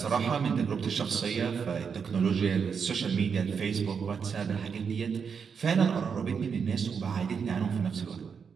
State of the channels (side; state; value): left; quieter; 6.3 dB